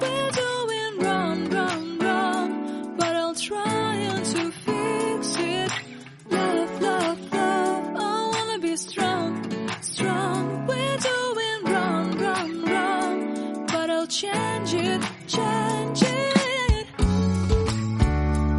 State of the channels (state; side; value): identical; both; correlation 1.00